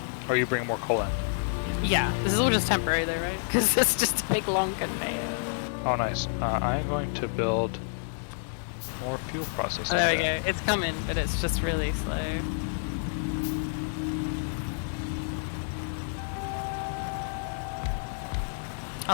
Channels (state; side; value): silent; right; digital silence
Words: Or you bring more coal in. Yeah, this is all just temporary though, right? Because it's just a big long conveyor. Oh, nice. I'm going to build more fuel processing. Oh, there we go. It's coming, but it's just really slow.